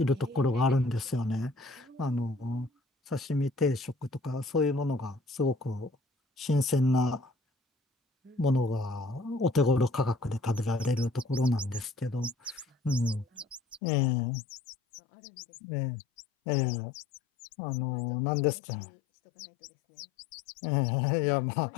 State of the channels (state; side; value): drops out; right; at 13.8 s